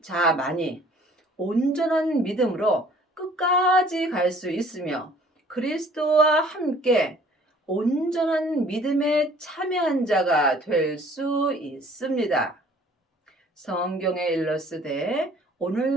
자만이 온전한 믿음으로 끝까지 갈 수 있으며 그리스도와 함께 온전한 믿음에 참여한 자가 될 수 있습니다. 성경에 일렀으되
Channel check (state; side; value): normal; both; correlation 0.54